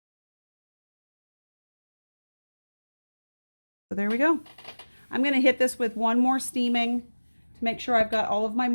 So there we go. I'm going to hit this with one more steaming to make sure I've got all of my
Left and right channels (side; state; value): both; inverted; correlation -1.00